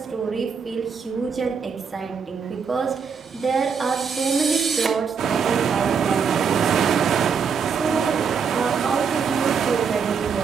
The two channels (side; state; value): left; quieter; 6.2 dB